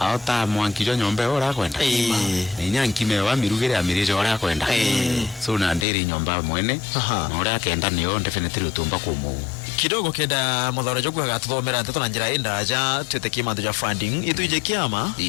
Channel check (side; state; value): right; drops out; at 5.9 s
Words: mwankijo nyombe ora kwenda ni nyankime wa mirugire amirije ora kwenda so na nderi nyomba mwene na ora kenda niyo definitely utumba kumu kidogo kenda muthara jogu agatuthomera nteto na njira indaja tweteke mantu ja funding ituje kiama